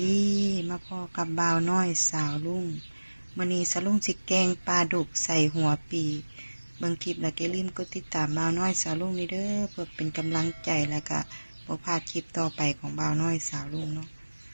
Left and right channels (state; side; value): inverted; both; correlation -1.00